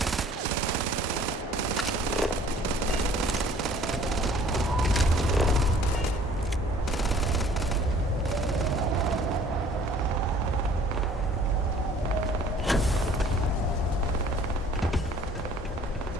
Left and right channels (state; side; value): normal; both; correlation 0.54